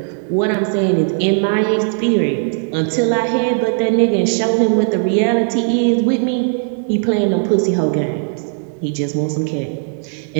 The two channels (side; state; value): left; silent; digital silence